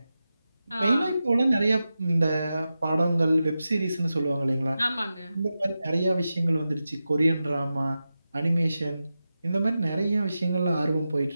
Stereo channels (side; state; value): both; inverted; correlation -0.92